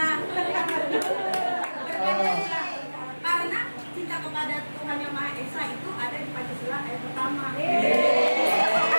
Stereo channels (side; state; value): both; inverted; correlation -1.00